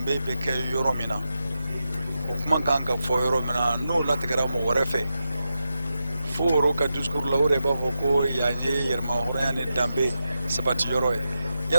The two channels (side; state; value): both; inverted; correlation -0.89